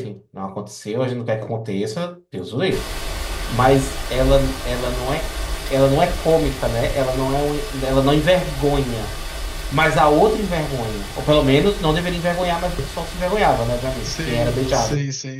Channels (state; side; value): identical; both; correlation 1.00